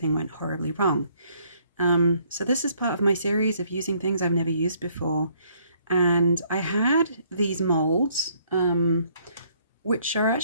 went horribly wrong. So this is part of my series of using things I've never used before. And I had these molds, which are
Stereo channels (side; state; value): both; inverted; correlation -0.66